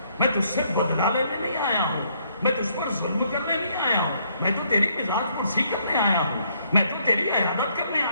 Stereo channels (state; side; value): inverted; both; correlation -0.70